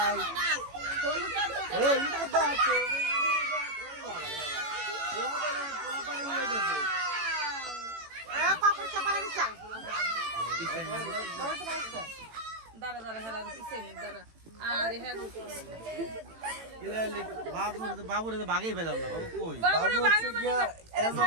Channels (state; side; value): late; left; 18 ms